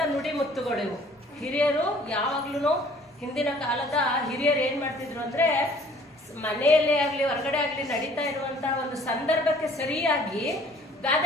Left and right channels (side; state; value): both; normal; correlation 0.55